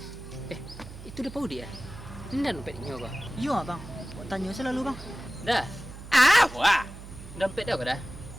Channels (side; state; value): right; noise; hum, 14 dB below the sound